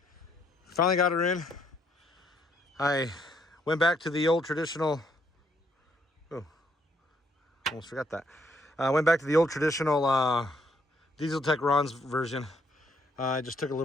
Finally got her in. I went back to the old traditional, almost forgot that. I went back to the old traditional Diesel Tech Ron's version. I just took a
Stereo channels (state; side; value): normal; both; correlation 0.71